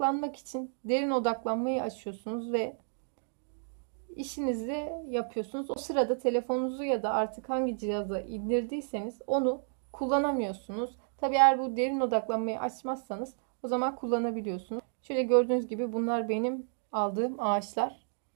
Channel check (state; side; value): silent; left; digital silence